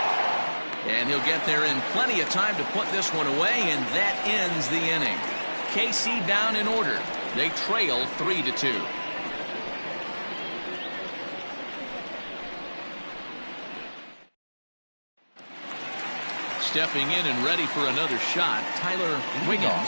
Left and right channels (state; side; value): inverted; both; correlation -1.00